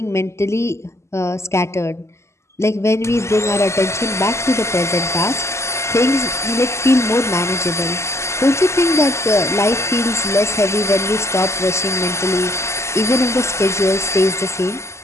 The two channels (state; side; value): late; right; 0.13 ms